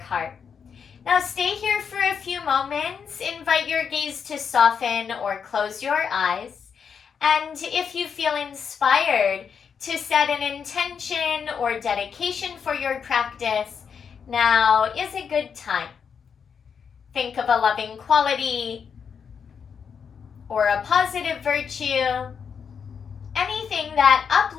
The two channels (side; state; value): right; quieter; 6.7 dB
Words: Now stay here for a few moments. Invite your gaze to soften or close your eyes. And if you feel inspired to set an intention or dedication for your practice, now is a good time. Think of a loving quality or a positive virtue, anything that